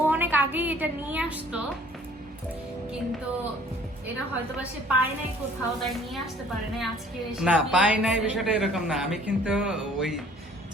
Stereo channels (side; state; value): both; normal; correlation 0.54